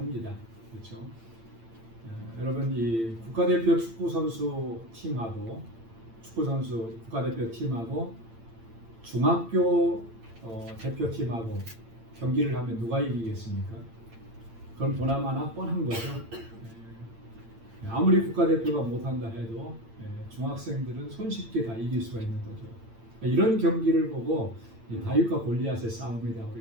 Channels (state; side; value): late; left; 8.8 ms